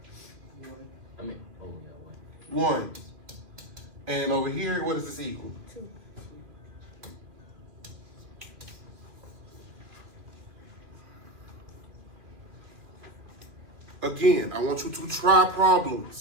1. And over here, what does this equal? 2. Again, I want you to try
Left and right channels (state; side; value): late; left; 2.6 ms